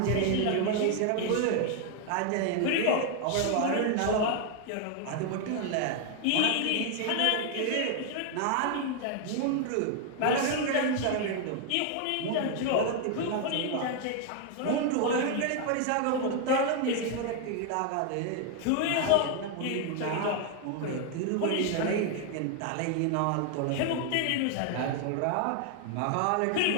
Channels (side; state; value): both; different; correlation 0.00